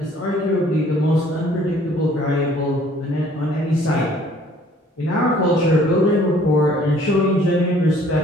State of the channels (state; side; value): normal; both; correlation 0.57